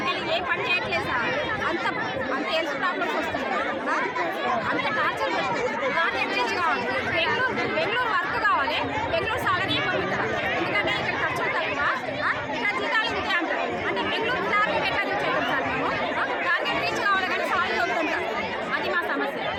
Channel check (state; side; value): identical; both; correlation 1.00